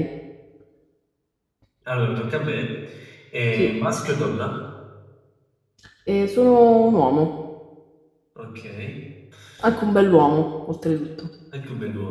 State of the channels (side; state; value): both; identical; correlation 1.00